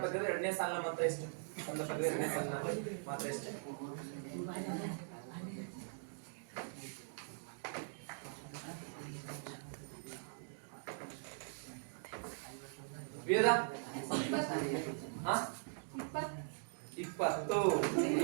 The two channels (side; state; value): left; silent; digital silence